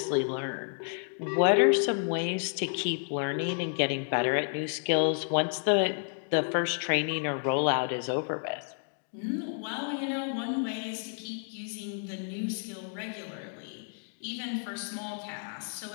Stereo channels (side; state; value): right; silent; 57 dB below the other